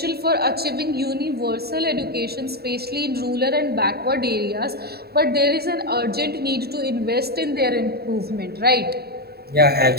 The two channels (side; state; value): left; late; 0.46 ms